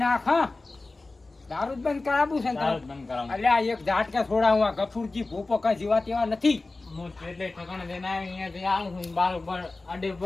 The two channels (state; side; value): quieter; right; 3.3 dB